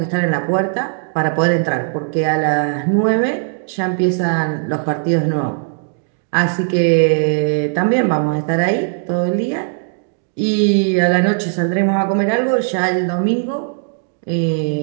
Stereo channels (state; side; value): silent; left; digital silence